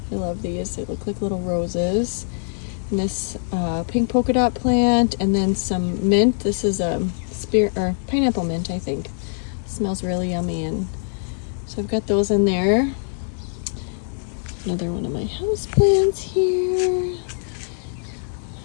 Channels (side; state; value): right; silent; digital silence